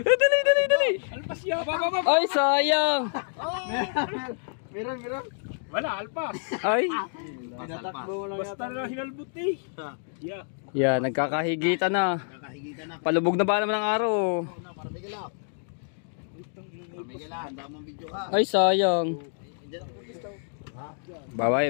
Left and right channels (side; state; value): right; silent; digital silence